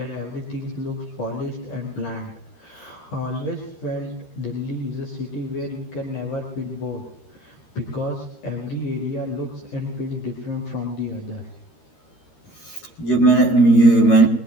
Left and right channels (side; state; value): right; late; 13 ms